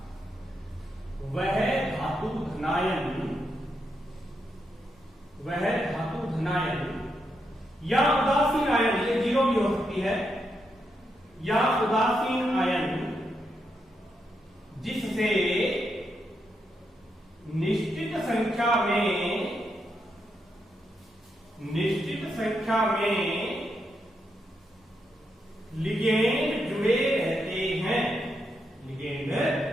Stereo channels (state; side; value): normal; both; correlation 0.82